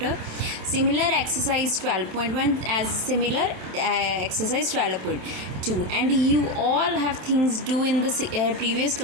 similar exercise 12.1 as similar exercise 12.2, and you all have things do in the previous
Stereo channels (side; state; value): left; late; 27 ms